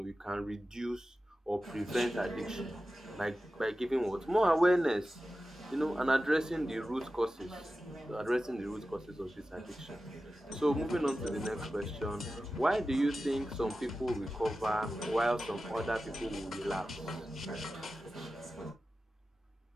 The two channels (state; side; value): normal; both; correlation 0.94